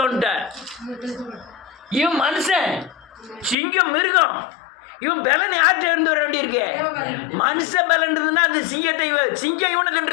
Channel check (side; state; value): right; drops out; at 3.6 s